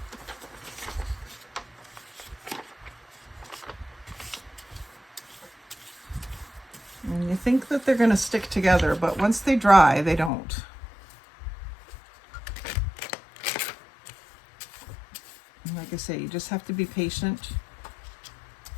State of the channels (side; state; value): right; drops out; at 10.3 s